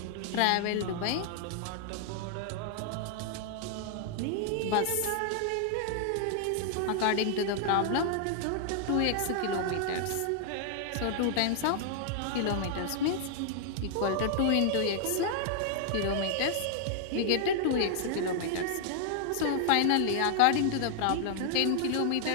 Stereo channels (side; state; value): both; different; correlation -0.01